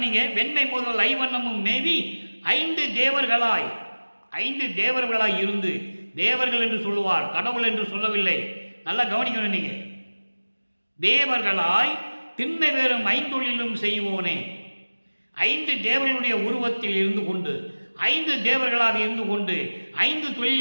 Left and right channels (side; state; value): both; inverted; correlation -1.00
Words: வெண்மை முதல் ஐவண்ணமும் மேவி 5 தேவர்களாய், 5 தேவர்களாய் இருந்து, தேவர்கள் என்று சொல்லுவார், கடவுள் என்று சொல்லவில்லை. நல்லா கவனிக்கணும் நீங்க. தேவர்களாய் திண்மை வேறும் 5 செய்வோனே. 5 தேவர்களுடைய உருவத்தில் இருந்து கொண்டு, 5 தேவர்களாக இருந்து கொண்டு 5